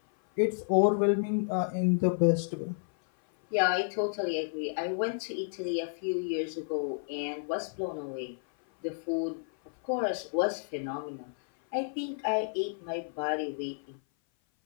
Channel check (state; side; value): silent; right; 56 dB below the other